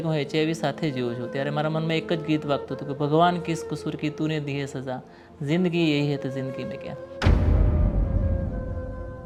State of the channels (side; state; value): both; identical; correlation 1.00